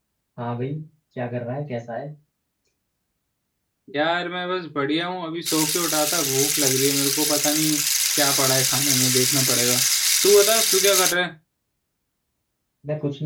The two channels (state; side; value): identical; both; correlation 1.00